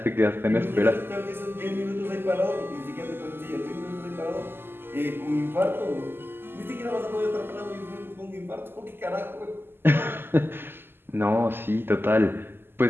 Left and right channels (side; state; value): left; late; 0.10 ms